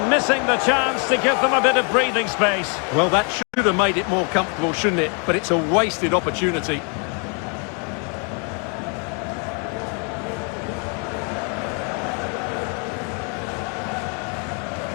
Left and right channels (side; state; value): right; quieter; 37.7 dB